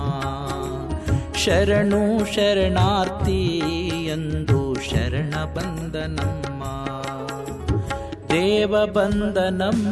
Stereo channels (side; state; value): both; identical; correlation 1.00